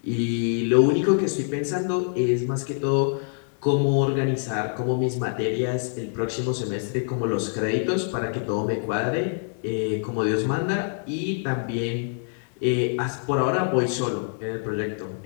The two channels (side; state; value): right; silent; digital silence